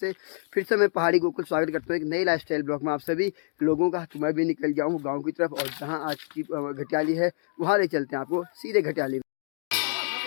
फिर से मैं पहाड़ी गोकुल स्वागत करता हूँ एक नई लाइफ स्टाइल ब्लॉग में आप सभी लोगों का। तो मैं भी निकल गया हूँ गाँव की तरफ, और जहाँ आज की घटियाली है वहाँ ले चलते हैं आपको सीधे घटियाली।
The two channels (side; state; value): right; silent; digital silence